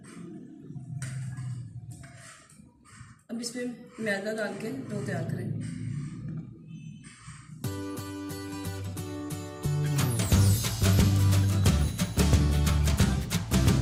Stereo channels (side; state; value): both; identical; correlation 1.00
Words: अब इसमें मैदा डाल के डो तैयार करें।